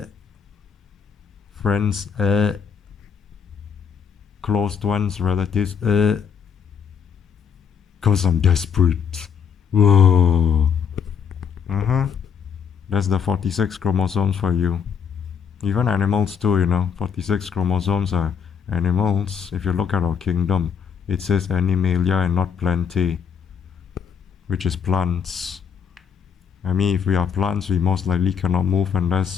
friends, closed ones, relatives, cause I'm desperate. Whoa. That's the 46 chromosomes for you. Even animals too, you know. 46 chromosomes are animals. If you look at our kingdom, it says Animalia and not Plantae, which is plants. I mean, if we are plants, we most likely cannot move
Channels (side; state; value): right; quieter; 7.1 dB